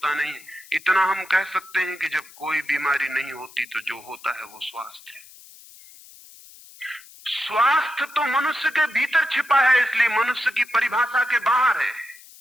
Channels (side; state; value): left; noise; hiss, 21 dB below the sound